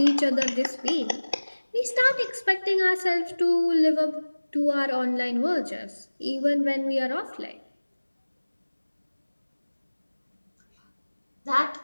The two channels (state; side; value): inverted; both; correlation -1.00